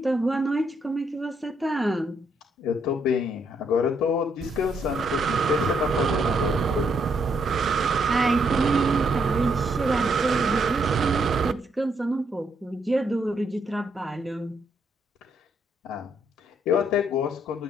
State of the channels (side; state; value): both; normal; correlation 0.74